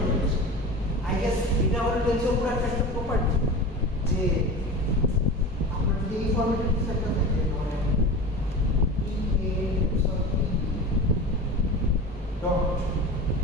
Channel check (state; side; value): normal; both; correlation 0.31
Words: আই গেস এটা হলো টেনসর পুরো একটা প্রপার্টি যে আমরা যদি এই ফরম্যাটে কিছু একটা থাকে মানে E A tensor E dot